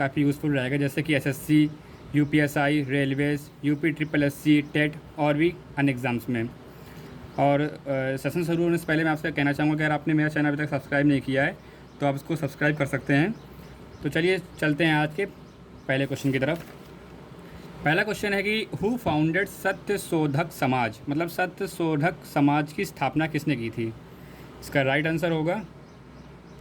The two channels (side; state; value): both; identical; correlation 1.00